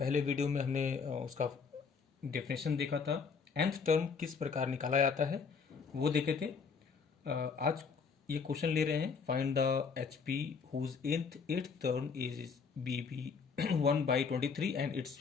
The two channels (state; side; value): quieter; right; 5.5 dB